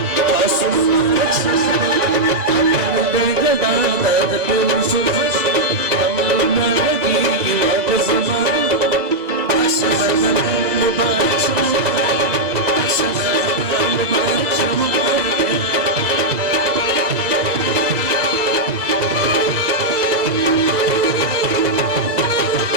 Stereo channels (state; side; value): late; left; 1.9 ms